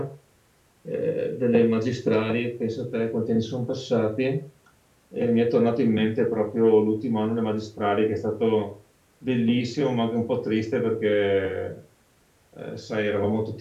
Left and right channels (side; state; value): both; identical; correlation 1.00